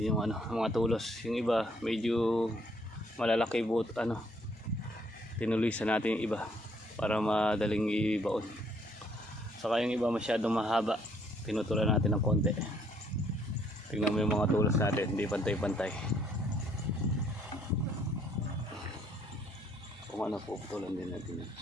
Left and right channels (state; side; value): normal; both; correlation 0.66